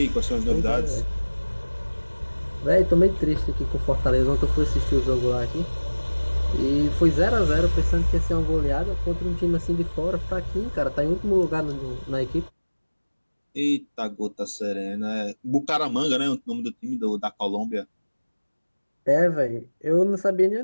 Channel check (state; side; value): inverted; both; correlation -1.00